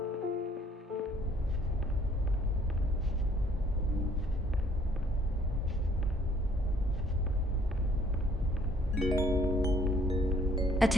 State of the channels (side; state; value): both; normal; correlation 0.61